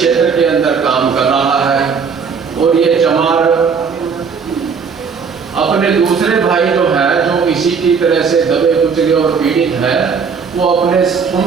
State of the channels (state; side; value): quieter; left; 5.8 dB